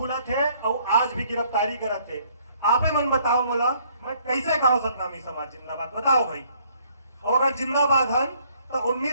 थे और आज भी गिरफ्तारी करत थे। आपे मन बताओ मोला मैं कैसे कहो सतनामी समाज जिंदाबाद बताओ भाई और अगर जिंदाबाद हन तो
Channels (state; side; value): inverted; both; correlation -0.63